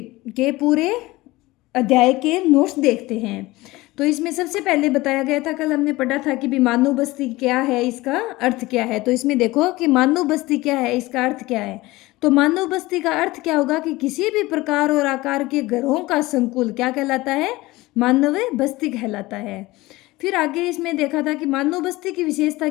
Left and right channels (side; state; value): right; quieter; 19.8 dB